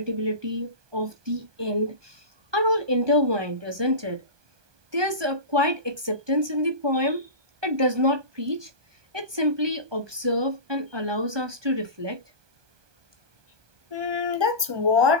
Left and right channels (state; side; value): late; left; 1.2 ms